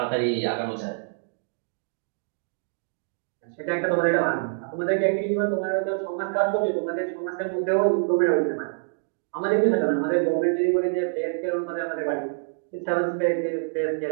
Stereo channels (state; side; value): silent; left; digital silence